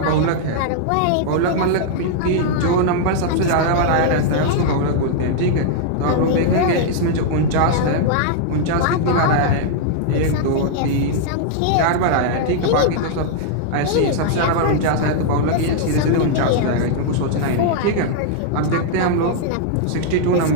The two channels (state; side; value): different; both; correlation -0.01